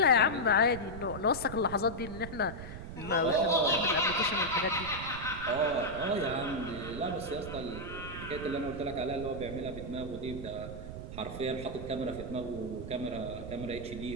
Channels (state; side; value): noise; right; rumble, 10 dB below the sound